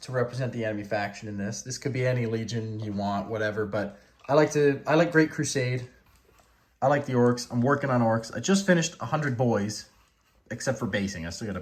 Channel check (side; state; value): both; identical; correlation 1.00